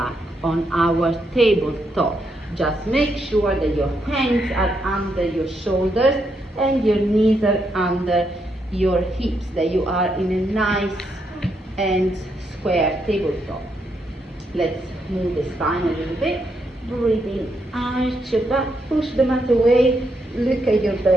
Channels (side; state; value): both; normal; correlation 0.79